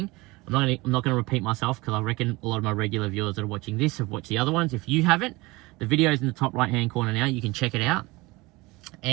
I'm not going to repeat myself, because I reckon a lot of my regular viewers that are watching this have watched the other ones. If you haven't, the video is in the top right hand corner now. You can check it out.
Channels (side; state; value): left; quieter; 22.5 dB